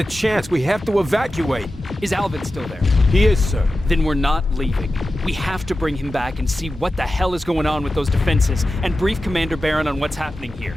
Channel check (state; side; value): normal; both; correlation 0.93